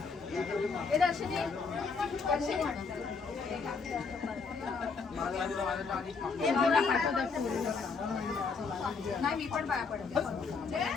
नाही मी पण पाया पडते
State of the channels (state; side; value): quieter; right; 4.9 dB